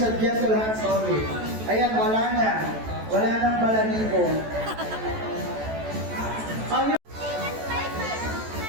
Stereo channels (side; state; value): left; late; 14 ms